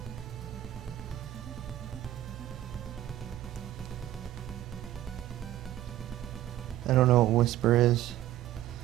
I don't know what Whisper is.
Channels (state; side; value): quieter; left; 13.5 dB